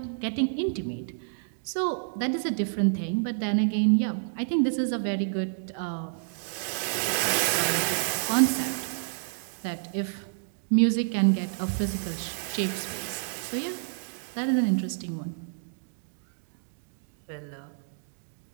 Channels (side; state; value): left; silent; digital silence